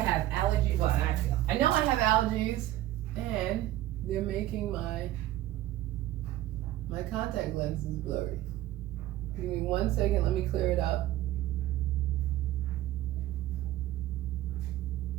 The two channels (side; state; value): left; quieter; 14.5 dB